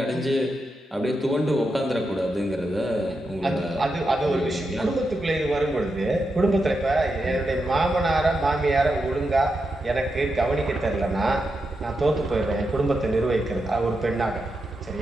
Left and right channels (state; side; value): normal; both; correlation 0.86